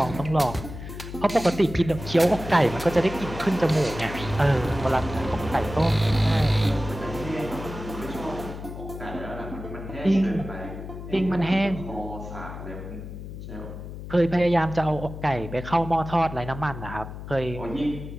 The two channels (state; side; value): noise; left; hum, 10 dB below the sound